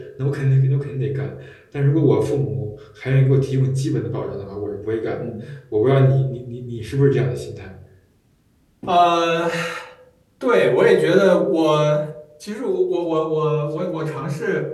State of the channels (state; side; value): identical; both; correlation 1.00